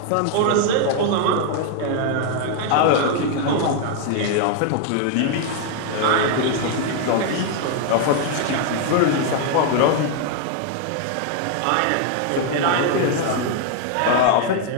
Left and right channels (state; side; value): different; both; correlation 0.00